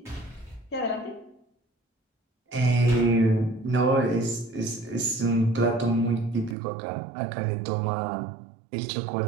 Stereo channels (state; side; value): drops out; left; at 6.6 s